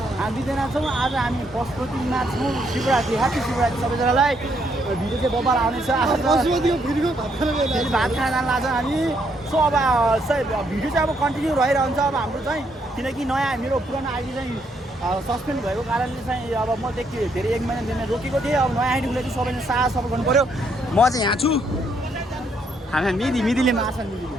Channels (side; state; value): both; normal; correlation 0.73